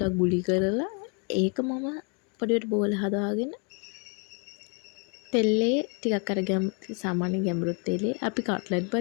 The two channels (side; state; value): right; quieter; 35.9 dB